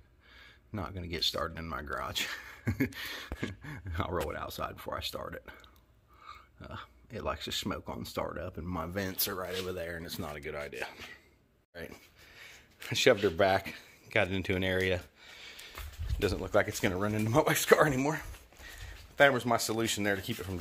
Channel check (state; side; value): identical; both; correlation 1.00